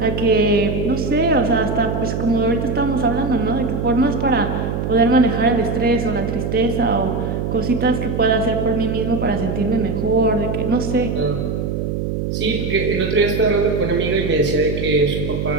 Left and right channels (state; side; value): noise; right; hum, 2 dB below the sound